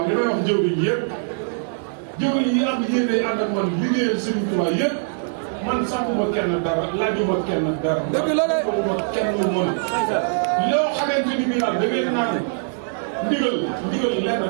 li may wax jëwriñ yi yëpp jëwriñ yi am yéene ànd ak man liggéeyal Serigne Touba yëpp man sàmmuma kenn dara laajuma kenn dara. dëgg la de ma kenn lu mën. loo xamante ni bii daal da ngeen naan ndigal lenn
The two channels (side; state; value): left; silent; 64 dB below the other